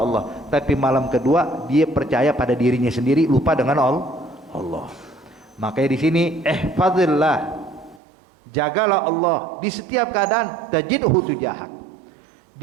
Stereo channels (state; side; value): drops out; left; at 8.0 s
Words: Allah. Tapi malam kedua dia percaya pada dirinya sendiri, lupa dengan Allah. Makanya di sini ihfazillah, jagalah Allah di setiap keadaan, tajidhu tujahak.